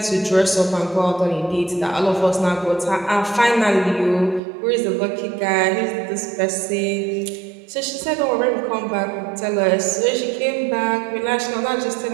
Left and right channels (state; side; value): drops out; left; at 4.4 s